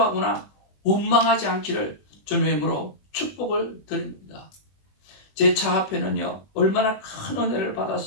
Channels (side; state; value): right; late; 21 ms